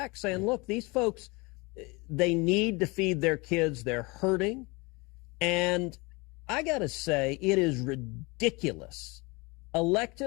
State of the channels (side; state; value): right; quieter; 26.2 dB